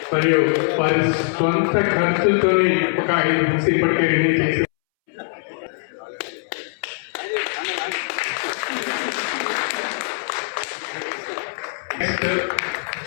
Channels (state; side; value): silent; right; 64 dB below the other